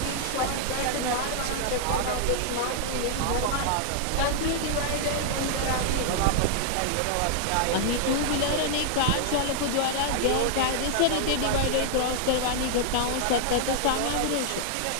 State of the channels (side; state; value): both; different; correlation -0.01